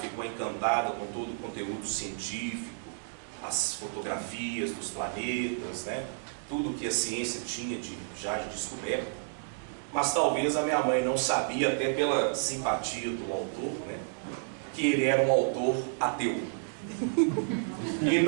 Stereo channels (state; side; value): silent; left; digital silence